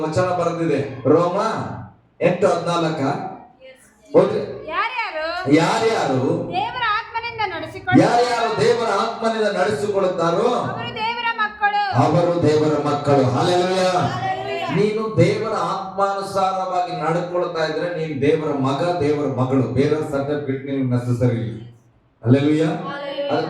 ವಚನ ಬರೆದಿದೆ, ರೋಮ 8:14. ಓದ್ರಿ. ಯಾರ್ಯಾರು ದೇವರ ಆತ್ಮನಿಂದ ನಡೆಸಿಕೊಳ್ಳುತ್ತಾರೋ ಅವರು ದೇವರ ಮಕ್ಕಳು. ಹಲ್ಲೆಲೂಯಾ. ನೀನು ದೇವರ ಆತ್ಮಾನುಸಾರವಾಗಿ ನಡ್ಕೊಳ್ತಾ ಇದ್ರೆ ನೀನು ದೇವರ ಮಗ, ದೇವರ ಮಗಳು. ಬೇರೆ ಸರ್ಟಿಫಿಕೇಟ್ ನಿಮ್ಗೆ ನೆಸಸರಿ ಇಲ್ಲ. ಹಲ್ಲೆಲೂಯಾ. ಅದ್ರ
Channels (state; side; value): identical; both; correlation 1.00